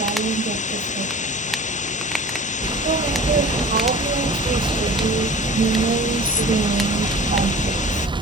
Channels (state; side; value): normal; both; correlation 0.41